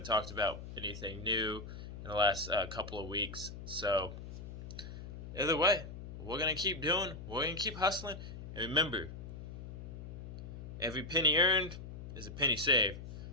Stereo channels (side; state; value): left; noise; hum, 10 dB below the sound